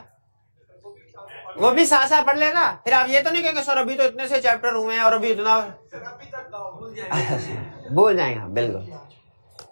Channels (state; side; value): inverted; both; correlation -1.00